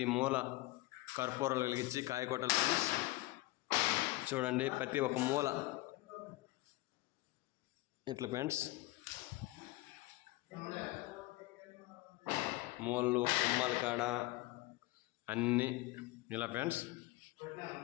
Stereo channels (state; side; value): quieter; right; 19.6 dB